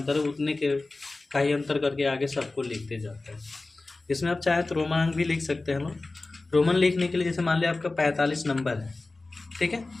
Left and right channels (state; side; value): quieter; right; 3.3 dB